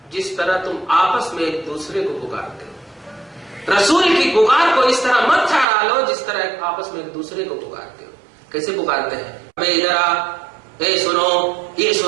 جس طرح تم آپس میں ایک دوسرے کو پکارتے ہو. رسول کی پکار کو اس طرح مت ٹھہرا لو جس طرح آپس میں ایک دوسرے کو پکارتے ہو. کیسے پکارتے ہیں؟ ہمیں ادھر آ، اے سنو، یہ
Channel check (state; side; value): drops out; left; at 5.7 s